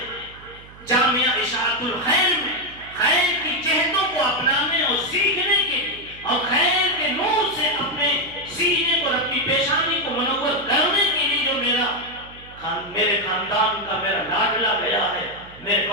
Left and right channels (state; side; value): noise; right; hum, 21 dB below the sound